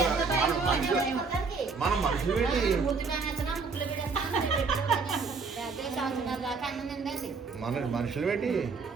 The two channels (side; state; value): left; quieter; 4.7 dB